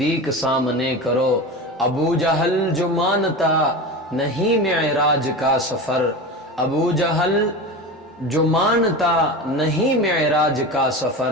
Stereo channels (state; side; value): normal; both; correlation 0.27